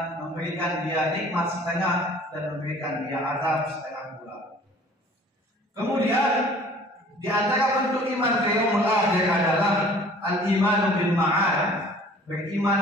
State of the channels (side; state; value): both; normal; correlation 0.50